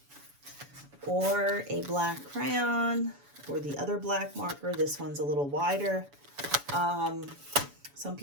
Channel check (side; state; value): left; late; 7.0 ms